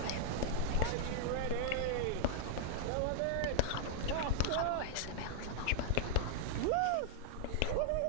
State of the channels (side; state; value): both; different; correlation -0.01